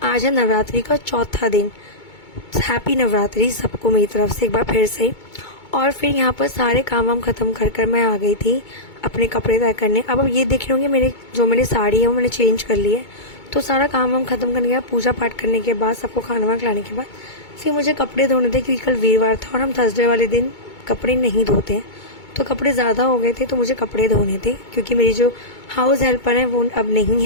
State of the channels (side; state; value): right; late; 2.2 ms